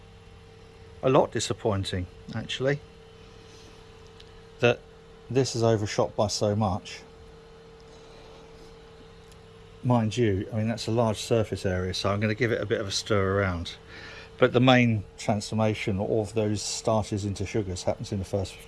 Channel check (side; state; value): both; identical; correlation 1.00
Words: a lot disappointing actually, that this is overshot by so much. Mind you, that's a large surface area, so I'm going to give it a bit of a stir around. But the main transformation of those starches into sugars happens in the first